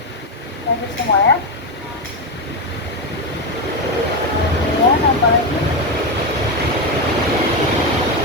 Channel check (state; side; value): normal; both; correlation 0.11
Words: hadir semua ya. Kemudian apa lagi